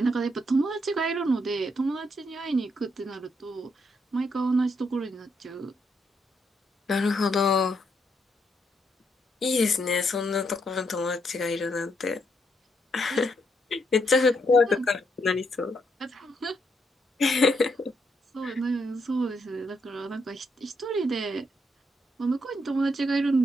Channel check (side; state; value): both; normal; correlation 0.77